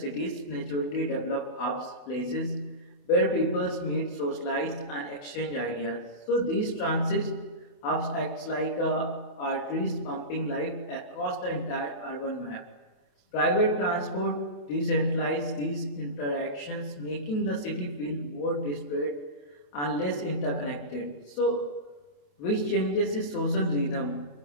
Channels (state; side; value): late; right; 28 ms